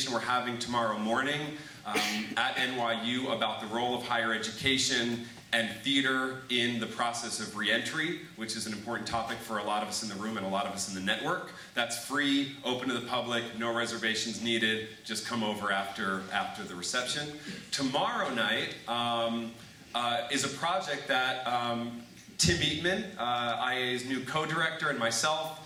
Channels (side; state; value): both; identical; correlation 1.00